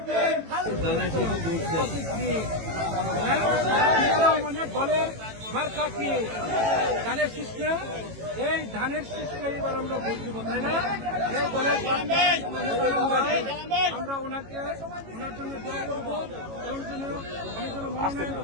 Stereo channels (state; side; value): late; left; 18 ms